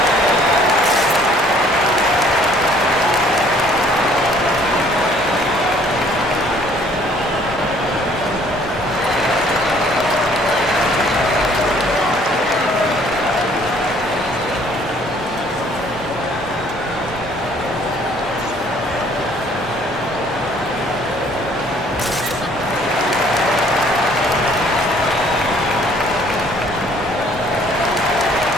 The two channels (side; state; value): both; normal; correlation 0.59